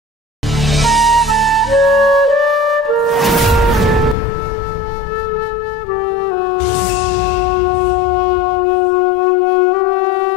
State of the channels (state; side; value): drops out; right; at 4.2 s